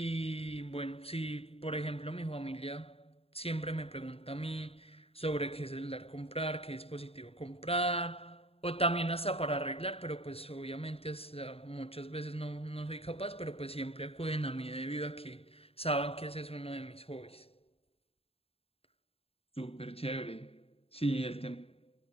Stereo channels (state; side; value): late; right; 0.28 ms